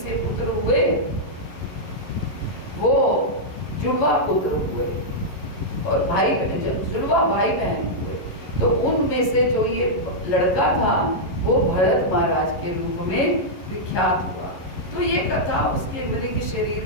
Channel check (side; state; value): right; late; 11 ms